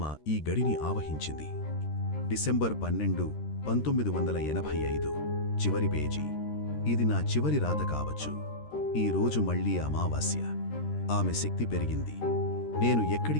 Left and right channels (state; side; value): late; right; 13 ms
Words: ఈ గడిని ఆవహించింది. డిసెంబర్ 12, 1985. చివరి పేజీ. ఇది నా చివరి రాత కావచ్చు. ఈ రోజు మళ్లీ అమావాస్య. ఆమె శక్తి పెరిగింది. నేను